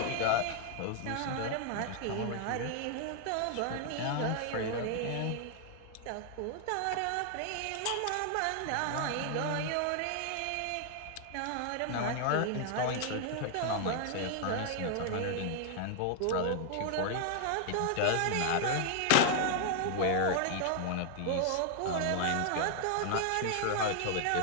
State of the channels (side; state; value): both; different; correlation 0.00